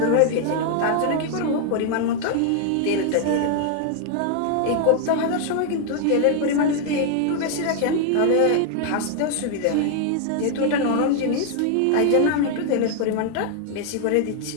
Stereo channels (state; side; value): different; both; correlation 0.00